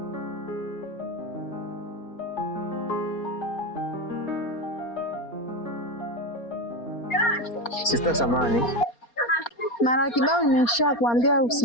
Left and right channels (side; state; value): right; late; 4.3 ms